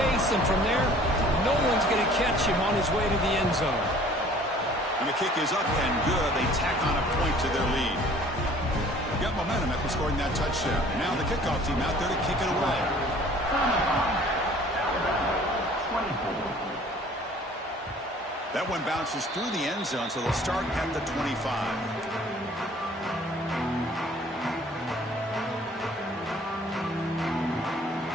and from there, no one's going to catch him on his way to the end zone. And the kick is up and good. They tack on a point to their lead. Got momentum after scoring that touchdown. Now the kickoff team out there to kick it away. That one bounces through the end zone, so they'll start at the 25.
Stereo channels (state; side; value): normal; both; correlation 0.52